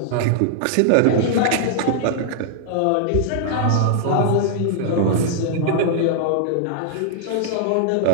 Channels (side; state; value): both; different; correlation -0.01